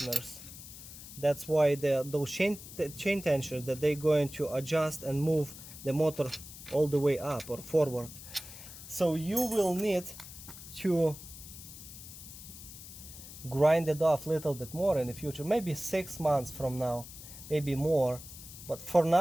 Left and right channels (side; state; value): left; noise; hiss, 14 dB below the sound